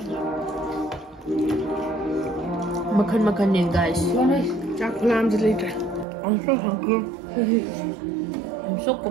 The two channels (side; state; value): left; drops out; at 6.1 s